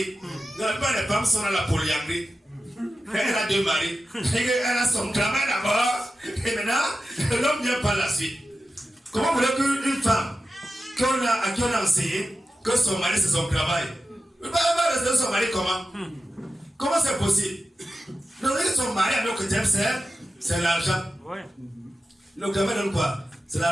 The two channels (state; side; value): normal; both; correlation 0.93